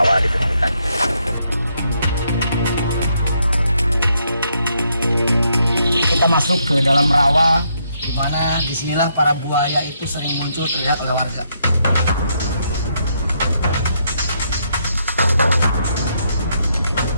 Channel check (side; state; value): both; inverted; correlation -0.75